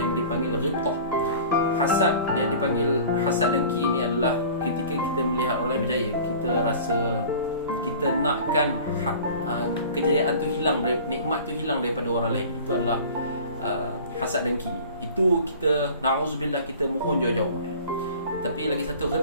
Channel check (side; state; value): both; inverted; correlation -0.42